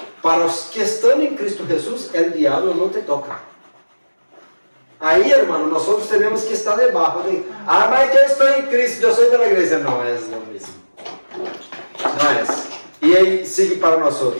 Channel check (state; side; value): inverted; both; correlation -1.00